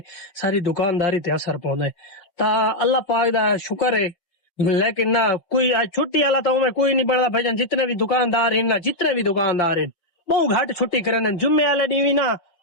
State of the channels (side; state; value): right; late; 5.8 ms